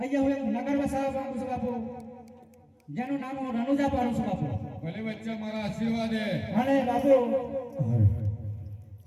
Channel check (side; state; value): both; identical; correlation 1.00